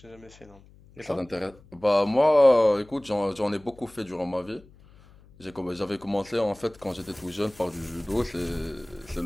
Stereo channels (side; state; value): left; noise; hum, 25 dB below the sound